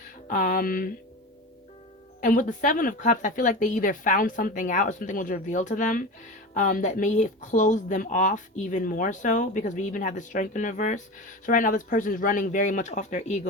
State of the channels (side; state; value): both; normal; correlation 0.28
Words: And with the Seven of Cups, I feel like they either found something out or something was revealed to them that may have closed them off even more so, because we even have the Strength in reverse. So right now this person is running very much off their